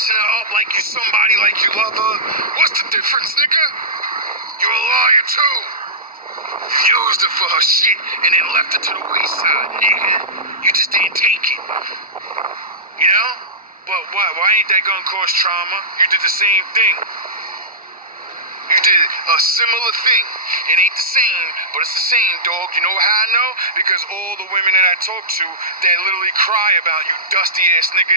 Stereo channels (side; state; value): both; normal; correlation -0.17